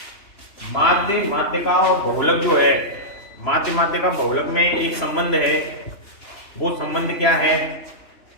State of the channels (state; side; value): late; right; 3.0 ms